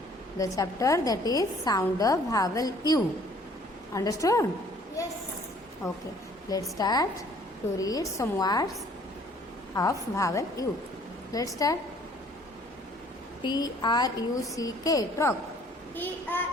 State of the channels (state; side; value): normal; both; correlation 0.57